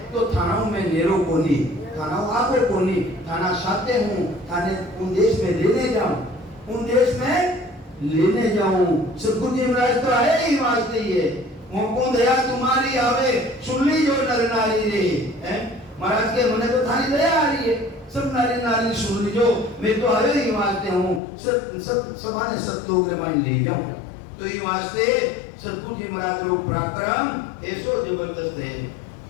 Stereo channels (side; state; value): right; drops out; at 21.2 s